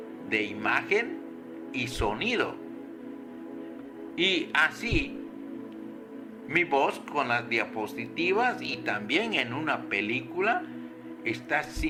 de imagen y sonido. Y así, mi voz con las diapositivas y también en una película está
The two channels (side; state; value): both; identical; correlation 1.00